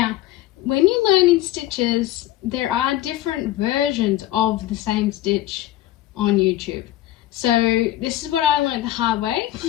when you're learning stitches, there are different versions of the same stitch on YouTube. So this is what I learned the hard way.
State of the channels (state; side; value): quieter; right; 14.4 dB